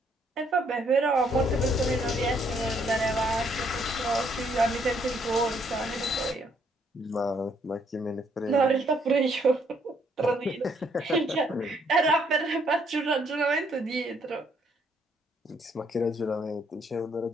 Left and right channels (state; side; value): normal; both; correlation 0.69